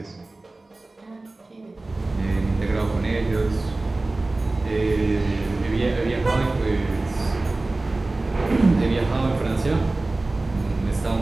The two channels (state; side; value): quieter; left; 3.0 dB